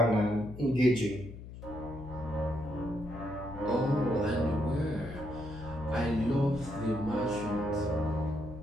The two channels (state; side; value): noise; left; hum, 13 dB below the sound